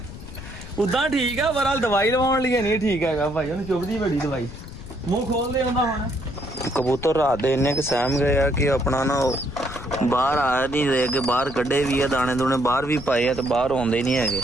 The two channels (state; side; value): noise; left; rumble, 13 dB below the sound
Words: ਉਦਾਂ ਠੀਕ ਆ ਪਰ ਦਵਾਈ ਲਵਾਉਣ ਲਈ ਨਹੀਂ ਠੀਕ ਹੈਗਾ ਭਾਈ ਉਹਨੂੰ ਚੁੱਭਦੀ ਬੜੀ ਦਵਾਈ ਮੂੰਹ ਖੋਲ ਦੇ ਹੁੰਦਾ ਹੁਣ ਕਬੂਤਰ ਰਾਤ ਦੇ ਇੰਨੇ ਕਿ ਸਹਿਮ ਗਏ ਆ ਕਿ ਆਪਣਾ ਨਾ ਬਾਹਰ ਆ ਨਹੀਂ ਰਹੇ ਕਿ ਬਾਹਰ ਕੱਢੇ ਵੀ ਆ ਦਾਣੇ ਦੂਣੇ ਬਾਹਰ ਵੀ ਪਾਏ ਆ ਤੇ ਬਾਹਰ ਆਉਂਦੇ ਨਹੀਂ ਹੈਗੇ